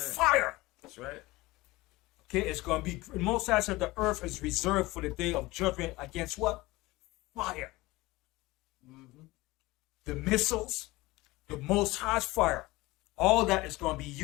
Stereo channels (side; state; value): right; quieter; 20.4 dB